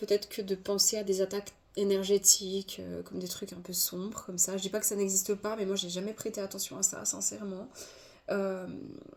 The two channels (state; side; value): identical; both; correlation 1.00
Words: que de penser à des attaques énergétiques, comme des trucs un peu sombres, comme ça. Je dis pas que ça n'existe pas, mais moi, j'ai jamais prêté attention à ça, sincèrement. Euh,